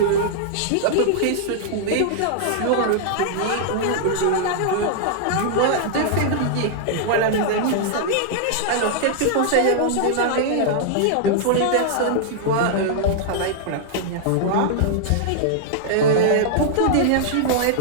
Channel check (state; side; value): different; both; correlation -0.01